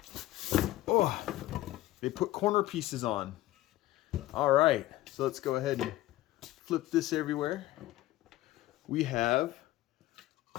Oh, they put corner pieces on. All right, so let's go ahead and flip this everywhere. We have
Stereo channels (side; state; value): right; quieter; 16.3 dB